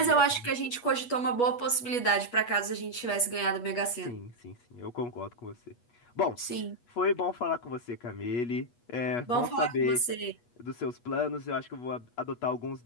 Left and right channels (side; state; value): right; late; 8.3 ms